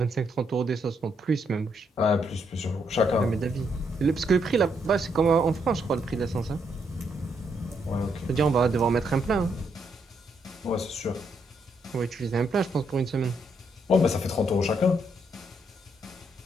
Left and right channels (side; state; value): both; normal; correlation 0.76